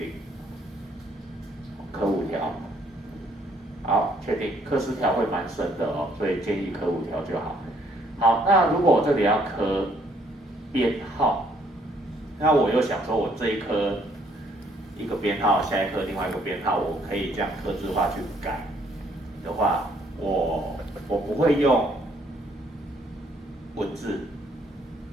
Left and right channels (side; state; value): both; normal; correlation 0.66